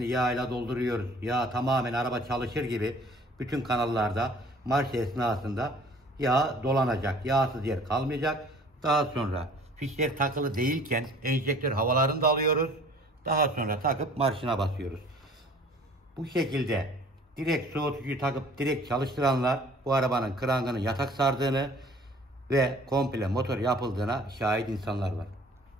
yağ ile dolduruyoruz. Yağ tamamen araba çalışır gibi bütün kanallarda marş esnasında yağ dolanacak. Yağsız yer kalmayacak. Daha sonra fişler takılı değilken enjektör havalarını da alıyoruz. Daha sonra takıp marşına basıyoruz. Bu şekilde direkt soğutucuyu takıp direkt çalıştıranlar bu arabanın krangını yatak sardığını ve komple motor yapıldığına şahit insanlar var.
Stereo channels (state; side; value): normal; both; correlation 0.51